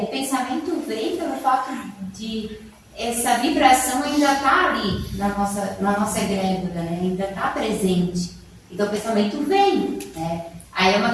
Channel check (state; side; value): identical; both; correlation 1.00